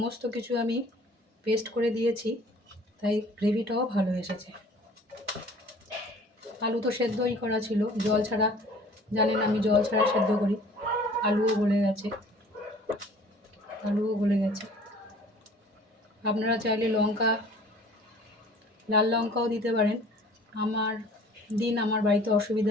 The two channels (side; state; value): both; normal; correlation 0.50